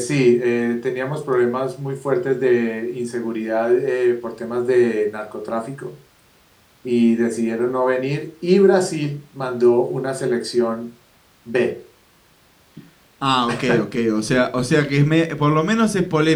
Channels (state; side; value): identical; both; correlation 1.00